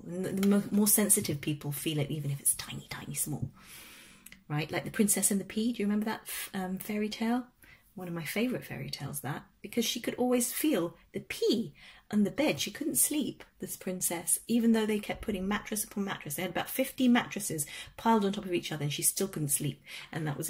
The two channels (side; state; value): both; identical; correlation 1.00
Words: And the more sensitive people feel it, even if it's tiny, tiny, small, right? Like the Princess and the Pea. Do you remember that fairy tale? One of my favourite fairy tales, that, because she could always feel the pea on the bed. She couldn't sleep, this princess, even though they kept putting mattress upon mattress. They had about 50 mattresses piled on top of each other, and she still couldn't sleep. And that was